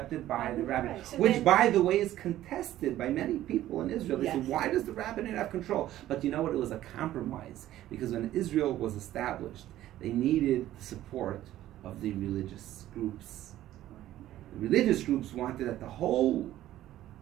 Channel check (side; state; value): left; quieter; 13.7 dB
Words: by the rabbinate, so which, by the way, is contested by many people in Israel. They say, why does the rabbinate have control? But you know what? It was a compromise, because when Israel was established, they needed the support of the religious groups. The religious groups wanted that the whole